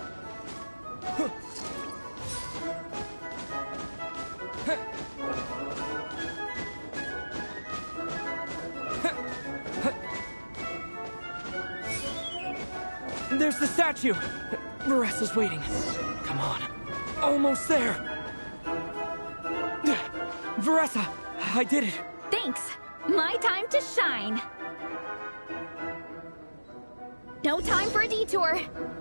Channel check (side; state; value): both; inverted; correlation -1.00